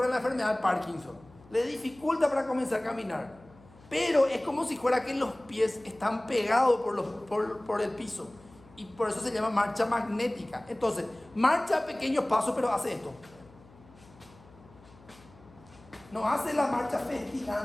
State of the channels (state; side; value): noise; left; hum, 24 dB below the sound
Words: en la enfermedad de Parkinson. Le dificulta para comenzar a caminar, pero es como si fuera que los pies están pegados por el piso, y por eso se llama marcha magnética. Entonces, marcha a pequeños pasos, pero hace esto. No hace la marcha